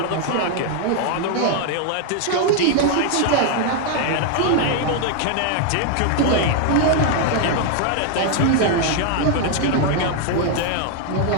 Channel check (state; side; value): different; both; correlation 0.01